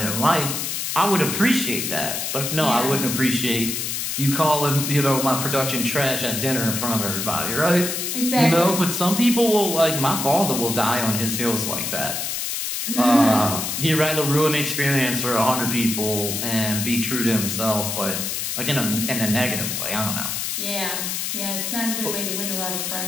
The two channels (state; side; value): noise; left; hiss, 2 dB below the sound